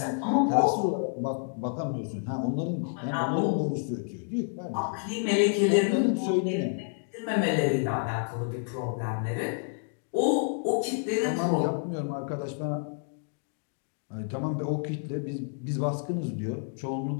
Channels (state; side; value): silent; right; 56 dB below the other